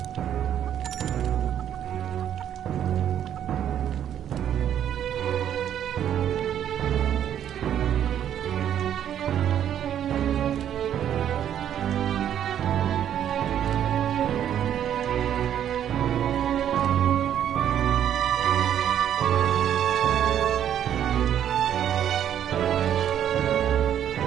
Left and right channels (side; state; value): left; quieter; 10.1 dB